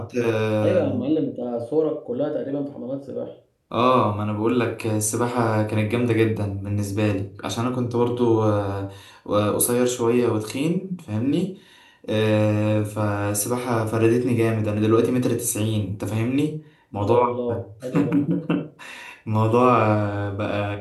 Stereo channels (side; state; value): both; identical; correlation 1.00